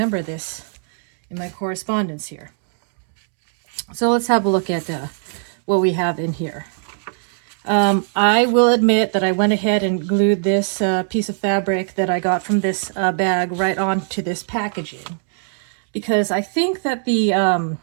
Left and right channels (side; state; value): left; silent; 66 dB below the other